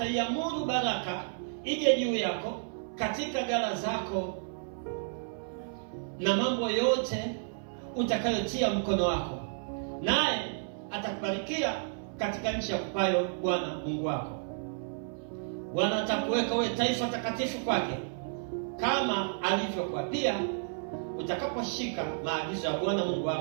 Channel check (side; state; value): left; silent; 57 dB below the other